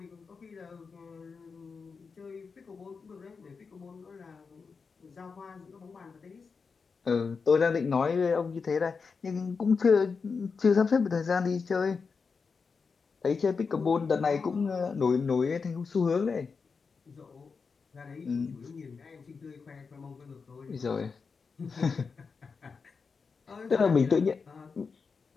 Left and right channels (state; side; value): quieter; right; 5.1 dB